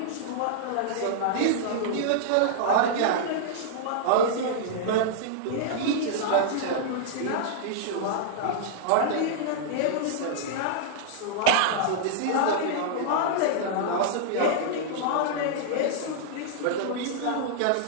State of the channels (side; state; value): both; different; correlation -0.02